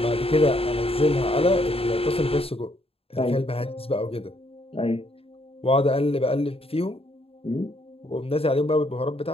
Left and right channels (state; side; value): late; right; 0.28 ms